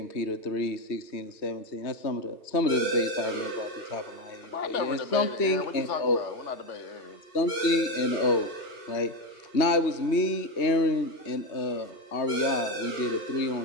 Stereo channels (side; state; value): right; late; 3.2 ms